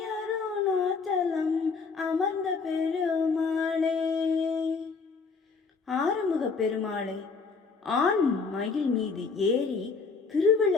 அமர்ந்த பெருமாளே. ஆறுமுக பெருமாளை ஆண் மயில் மீது ஏறி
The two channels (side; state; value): right; quieter; 4.8 dB